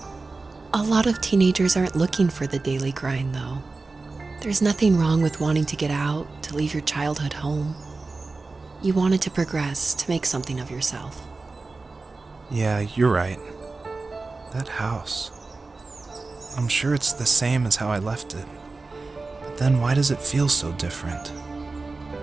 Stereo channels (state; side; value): quieter; left; 3.7 dB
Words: A lot of teenagers aren't looking for the daily grind, though. There's nothing wrong with wanting to get out, to leave your childhood home. You wanted to progress, to make something of yourself. Yeah, you're right. That house. I'm sure it's the same as how I left it. But then why does it feel so different?